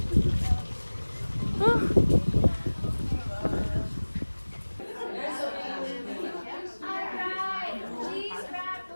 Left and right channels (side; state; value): both; inverted; correlation -1.00